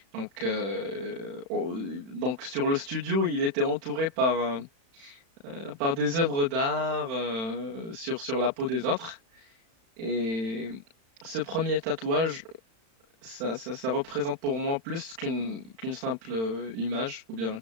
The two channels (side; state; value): left; late; 35 ms